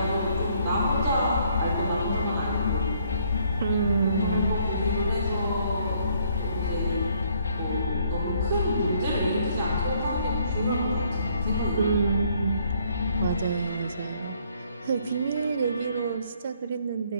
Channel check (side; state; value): both; inverted; correlation -0.66